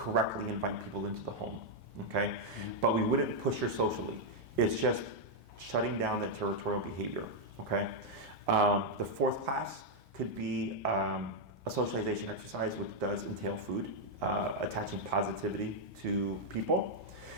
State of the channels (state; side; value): normal; both; correlation -0.01